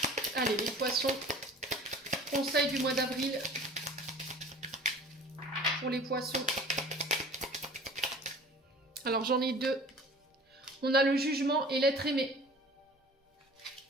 Allez, les poissons. Conseil du mois d'avril. Pour les poissons. Alors, j'en ai deux. On a le jugement et l'être aimé.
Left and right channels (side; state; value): both; normal; correlation 0.44